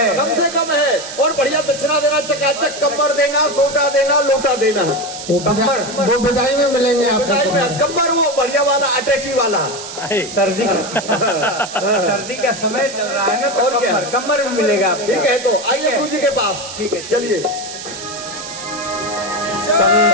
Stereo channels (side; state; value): right; noise; hiss, 11 dB below the sound